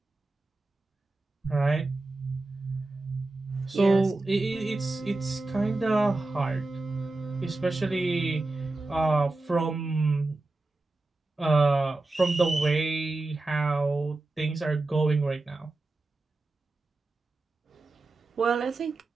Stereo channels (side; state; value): left; quieter; 3.2 dB